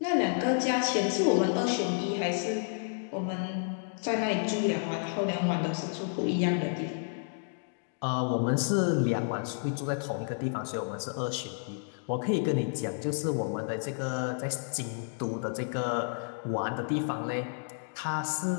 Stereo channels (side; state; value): right; silent; digital silence